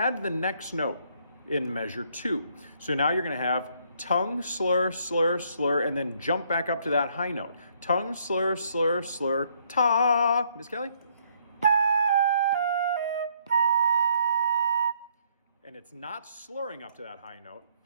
the next note in measure 2. So now you're going to have tongue, slur, slur, slur, and then jump back up to that high note. Tongue, slur, slur, slur, ta. Miss Kelly? And it's not slurring up to that high note.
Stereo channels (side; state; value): both; inverted; correlation -0.67